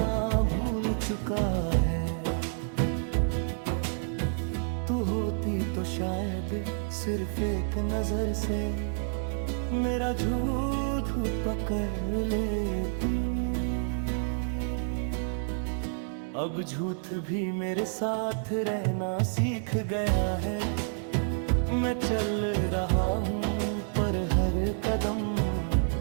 भूल चुका है। तू होती तो शायद सिर्फ एक नजर से मेरा झूठ पकड़ लेती। अब झूठ भी मेरे साथ रहना सीख गया है। मैं चल रहा हूँ पर हर कदम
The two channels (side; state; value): left; silent; digital silence